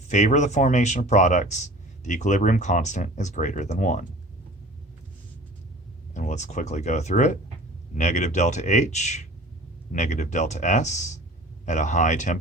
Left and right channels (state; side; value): normal; both; correlation 0.43